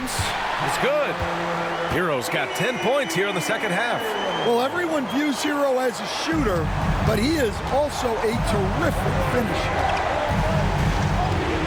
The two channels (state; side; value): identical; both; correlation 1.00